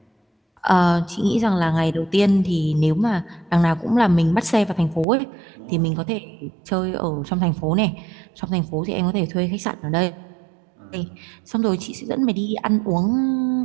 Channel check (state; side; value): drops out; left; at 5.1 s